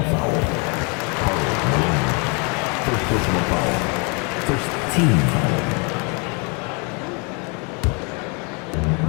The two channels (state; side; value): quieter; right; 33.6 dB